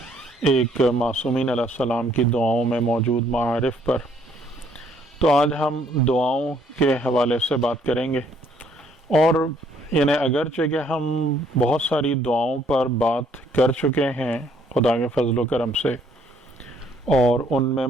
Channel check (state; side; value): normal; both; correlation 0.66